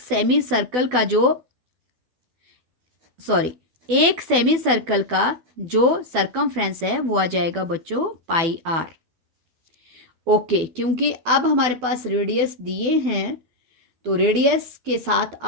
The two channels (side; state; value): left; late; 12 ms